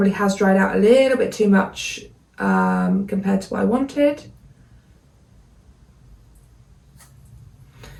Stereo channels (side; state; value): both; identical; correlation 1.00